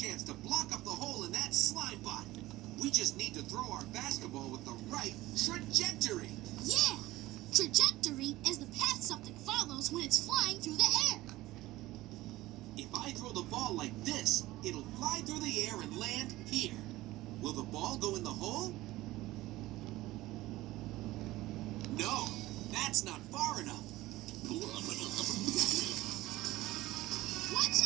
to block up the hole in that slime bot. We just need to throw our basketball with the right trajectory. Yeah! Trajectory is the path something follows when it's flying through the air. If I throw the ball like this, it'll fly through the air and land here. Will the ball go in the hole? No, that's not far enough. Watch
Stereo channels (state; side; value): quieter; left; 17.6 dB